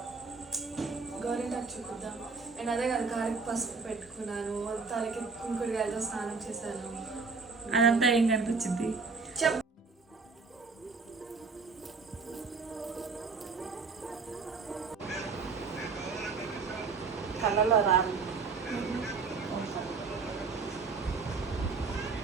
గోరింటాకు చూపిద్దాం. నేను అదే కదా కాలికి పసుపు పెట్టుకున్నాను, తలకి కుంకుడుగాయలతో స్నానం చేశాను. అదంతా ఏం కనిపించింది? చెప్ కళ్ళలో రాదు.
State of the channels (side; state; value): left; quieter; 4.7 dB